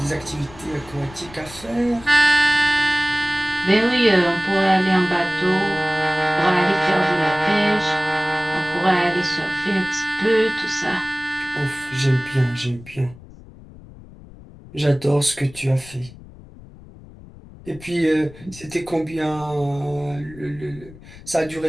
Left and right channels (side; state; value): left; noise; rumble, 20 dB below the sound